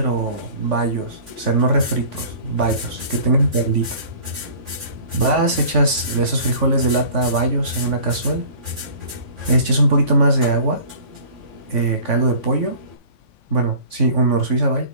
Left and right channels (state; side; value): late; right; 3.5 ms